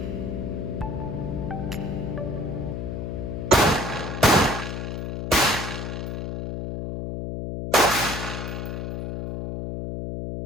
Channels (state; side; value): noise; left; hum, 4 dB below the sound